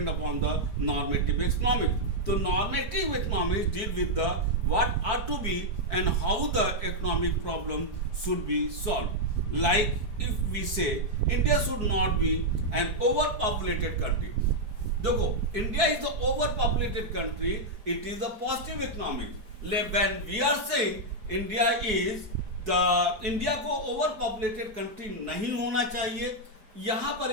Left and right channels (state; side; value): late; left; 4.6 ms